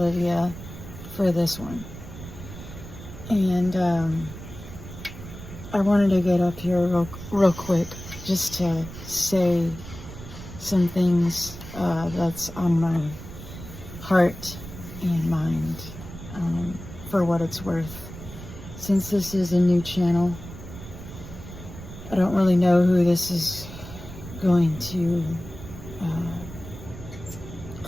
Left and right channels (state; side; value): noise; right; rumble, 13 dB below the sound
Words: for this one. And I wanted to get up here real quick just to say some things that's on my heart and mind, for what it's worth. Since this is a new channel, I don't really know who this is going to